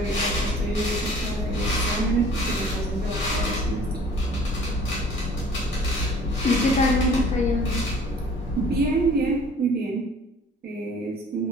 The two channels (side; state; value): both; normal; correlation 0.51